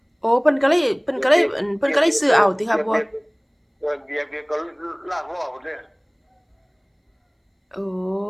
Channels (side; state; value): both; identical; correlation 1.00